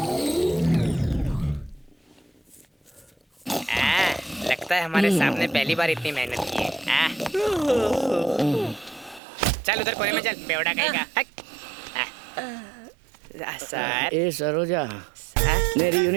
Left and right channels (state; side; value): drops out; left; at 9.2 s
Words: लगता है हमारे सामने पहली बार इतनी मेहनत की है। चल उधर कोने में चल, बेवड़ा कहेगा। सर। ए सरोजा, मेरी